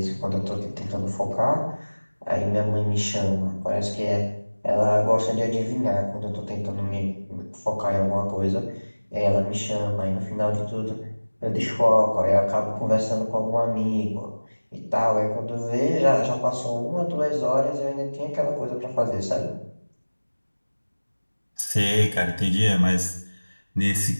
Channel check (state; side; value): inverted; both; correlation -1.00